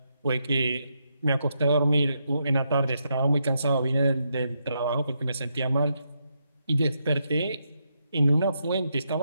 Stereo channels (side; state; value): both; inverted; correlation -0.80